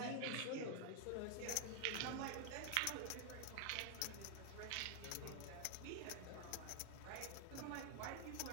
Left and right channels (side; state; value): both; different; correlation 0.00